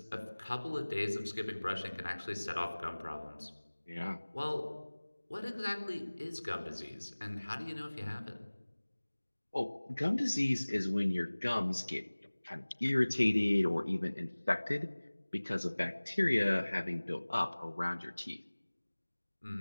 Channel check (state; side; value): inverted; both; correlation -1.00